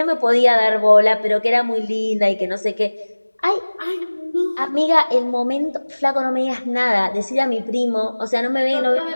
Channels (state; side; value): inverted; both; correlation -1.00